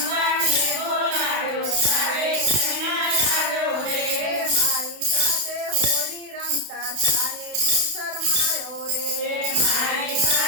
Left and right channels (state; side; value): late; left; 32 ms